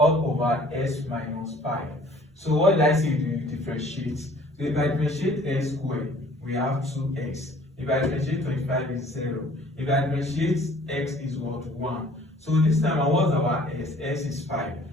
over s minus 5. So what did I say to differentiate? So if I differentiate x squared, we have 2x. If I differentiate 25 is 0. If I differentiate x is what? 1. So this time what's our s? S is 5.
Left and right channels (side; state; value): both; normal; correlation 0.53